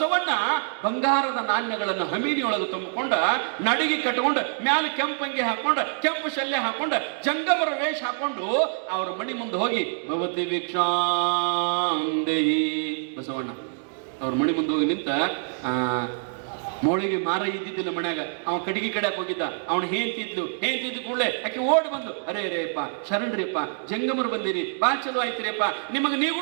ಬಂಗಾರದ ನಾಣ್ಯಗಳನ್ನು ಹಮೀನಿಯೊಳಗೆ ತುಂಬಿಕೊಂಡ ನಡಿಗೆ ಕಟ್ಕೊಂಡು ಮ್ಯಾಲ ಕೆಂಪಂಗಿ ಹಾಕೊಂಡ ಕೆಂಪು ಶಲ್ಯ ಹಾಕೊಂಡ ಜಂಗಮರ ವೇಷ ಹಾಕೊಂಡು ಅವ್ರ ಮನಿ ಮುಂದೆ ಹೋಗಿ ಭವತಿ ಭಿಕ್ಷಾಂದೇಹಿ ಬಸವಣ್ಣ ಅವ್ರ ಮನಿ ಮುಂದೆ ಹೋಗಿ ನಿಂತ ಮೋಳಿಗೆ ಮಾರ ಇದ್ದಿದ್ದಿಲ್ಲ ಮನ್ಯಾಗ. ಅವನ್ ಕಡಿಗೆ ಕಡೆ ಹೋಗಿದ್ದ. ಅವನು ಹೇಂತಿದ್ಲು ಕೂಡಲೇ ಆಕೆ ಓಡಿ ಬಂದು ಅರೇ ಅಪ್ಪ ಶರಣ್ರಿಯಪ್ಪ ಜಂಗಮರು ಬಂದಿರಿ ಬಾ ಚಲೋ ಆಯ್ತಿರಿಯಪ್ಪ, ನಿಮಗೆ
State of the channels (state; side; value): silent; left; digital silence